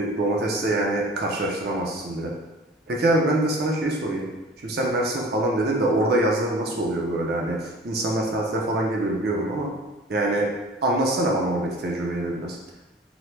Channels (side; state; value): both; normal; correlation 0.44